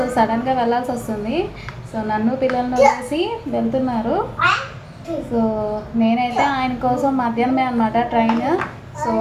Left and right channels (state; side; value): identical; both; correlation 1.00